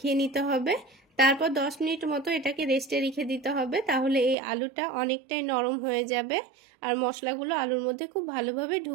নিতে হবে। তারপর 10 মিনিট মতো এটাকে রেস্টে রেখে দিতে হবে, তাহলে এই আলুটা অনেকটাই নরম হয়ে যাবে আর মশলাগুলো আলুর মধ্যে খুব ভালোভাবে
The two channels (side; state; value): left; drops out; at 4.4 s